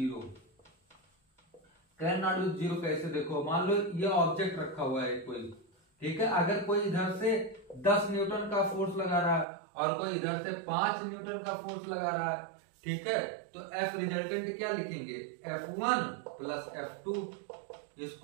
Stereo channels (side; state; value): left; drops out; at 9.5 s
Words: Can not be zero कैसे, देखो मान लो ये object रखा हुआ है कोई, ठीक है, अगर कोई इधर से 10 न्यूटन का फोर्स लगा रहा है और कोई इधर से 5 न्यूटन का फोर्स लगा रहा है, ठीक है, तो F रिजल्टेंट क्या लिखेंगे, F1 प्लस F2,